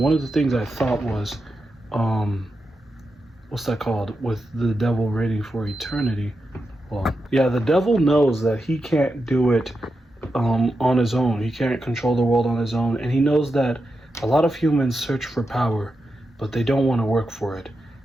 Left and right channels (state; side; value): normal; both; correlation 0.88